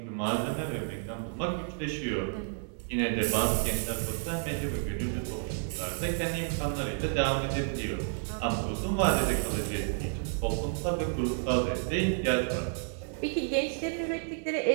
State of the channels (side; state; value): left; silent; 57 dB below the other